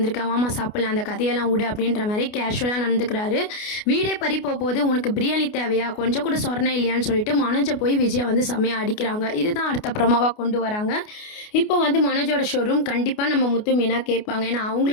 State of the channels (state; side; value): late; right; 29 ms